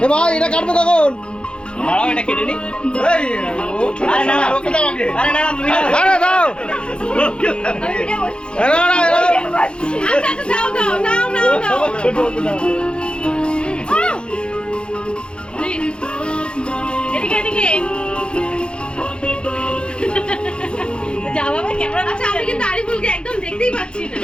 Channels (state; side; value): late; right; 0.054 ms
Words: ভাই এটা কাটবো কখন? দাঁড়াও এটা কেটে নি। আরে না ওকে দাও আগে। আরে না তুমি আরে দাও। আরে না আচ্ছা দাও দাও নাও নাও নাও ছোট ছোট দাও। এদিকে এদিকে যা বাবা ক্যামেরা। আচ্ছা আমি কিন্তু আরিফুলকে একদম দেখতেই পাচ্ছি না।